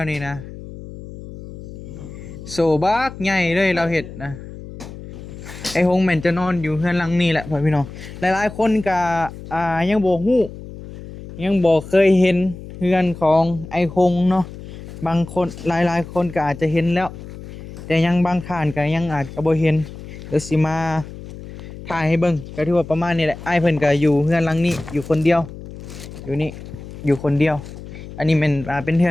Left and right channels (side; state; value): left; noise; hum, 13 dB below the sound